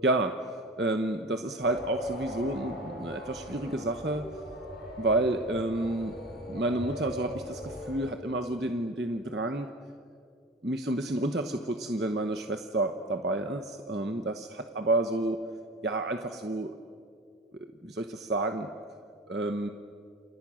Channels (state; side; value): normal; both; correlation 0.36